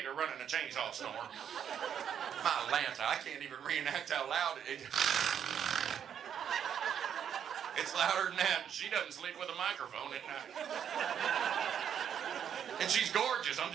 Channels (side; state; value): left; quieter; 8.6 dB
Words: running a chainsaw snore. My Lanta, I can't even reenact how loud it is. It's louder than that. She doesn't sleep with a microphone at night. And she's gorgeous. I'm